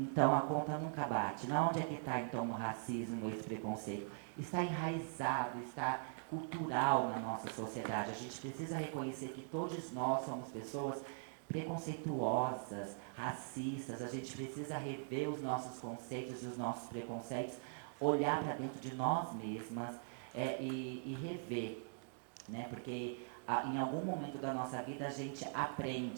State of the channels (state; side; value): silent; left; digital silence